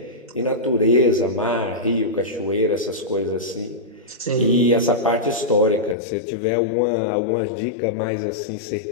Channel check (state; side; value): drops out; right; at 6.0 s